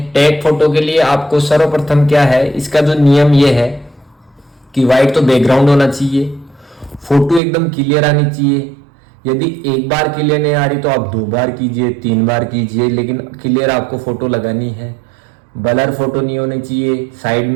टैग फोटो के लिए आपको सर्वप्रथम क्या है, इसका जो नियम ये है कि व्हाइट तो बैकग्राउंड होना चाहिए, फोटो एकदम क्लियर आनी चाहिए। यदि एक बार क्लियर नहीं आ रही तो आप 2 बार कीजिए, 3 बार कीजिए, लेकिन क्लियर आपको फोटो लगानी है। ब्लर फोटो नहीं होनी चाहिए, साइड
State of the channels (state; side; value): drops out; left; at 7.4 s